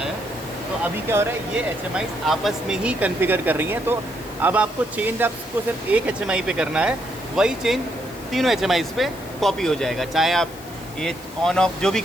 तो अभी क्या हो रहा है, ये HMI आपस में ही कॉन्फ़िगर कर रही हैं। तो अब आपको चेंज आपको सिर्फ एक HMI पे करना है, वही चेंज तीनों HMI पे कॉपी हो जाएगा। चाहे आप ये ऑन ऑफ जो भी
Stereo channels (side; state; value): left; noise; hiss, 20 dB below the sound